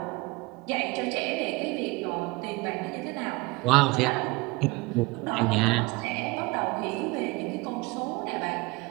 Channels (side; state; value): left; quieter; 23.9 dB